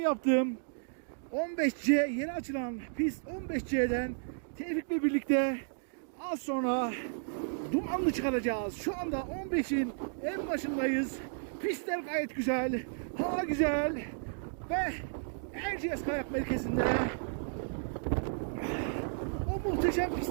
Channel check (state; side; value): silent; left; digital silence